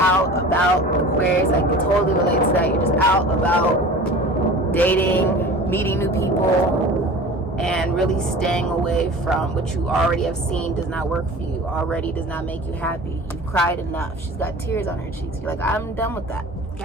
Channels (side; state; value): both; normal; correlation 0.39